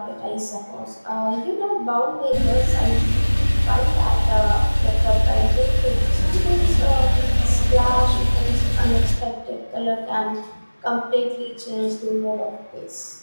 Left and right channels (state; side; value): inverted; both; correlation -1.00